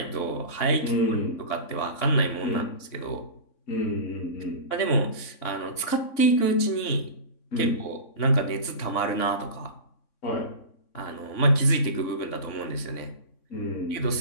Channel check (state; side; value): late; right; 3.6 ms